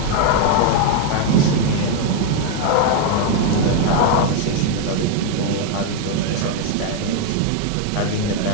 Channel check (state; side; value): different; both; correlation 0.00